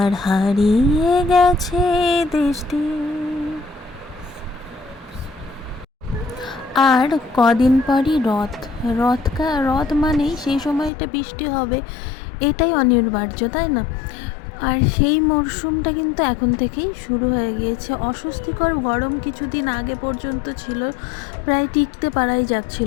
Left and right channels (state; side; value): drops out; right; at 10.9 s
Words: হারিয়ে গেছে দৃষ্টি। আর কদিন পরই রথ মানেই সেই সময়টা বৃষ্টি হবে, এটাই অনিবার্য, তাই না? আর সেই মরশুমটা কিন্তু এখন থেকেই শুরু হয়ে গিয়েছে। অস্বস্তিকর গরম কিছুদিন আগে পর্যন্ত ছিল, প্রায় টিকতে পারাই